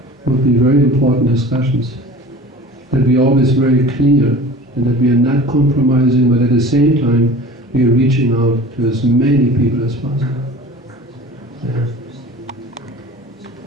Would be very important discussions. That we are always very clear, and that we are not compromising, but at the same time we are reaching out to as many people as possible. Yeah.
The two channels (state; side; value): normal; both; correlation 0.40